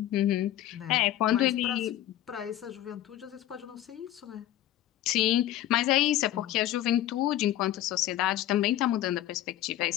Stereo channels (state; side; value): quieter; right; 13.1 dB